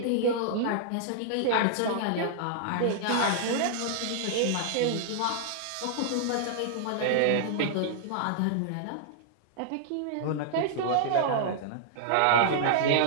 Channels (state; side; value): different; both; correlation -0.01